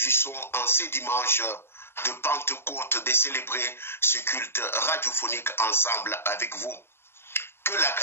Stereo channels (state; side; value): late; right; 0.11 ms